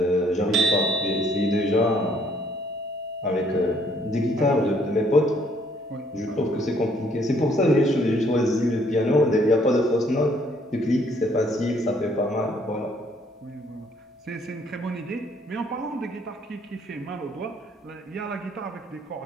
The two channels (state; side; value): normal; both; correlation 0.65